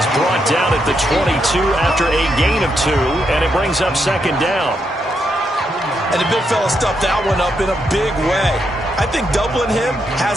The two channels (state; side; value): normal; both; correlation 0.80